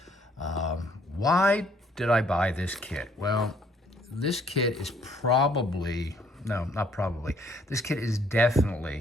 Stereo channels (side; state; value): both; normal; correlation 0.64